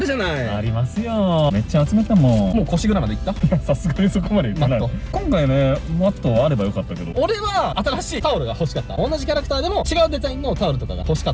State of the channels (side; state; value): both; identical; correlation 1.00